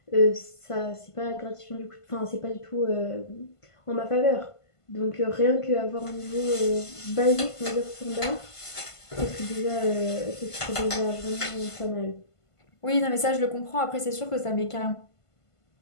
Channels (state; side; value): late; right; 1.5 ms